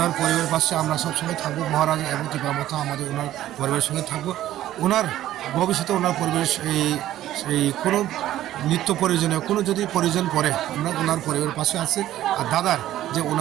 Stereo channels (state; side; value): quieter; left; 13.4 dB